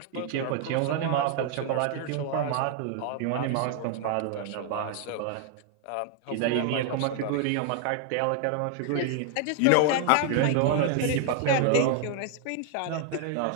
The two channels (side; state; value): both; different; correlation 0.00